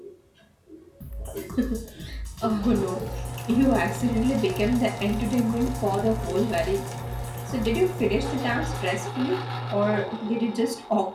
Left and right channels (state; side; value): identical; both; correlation 1.00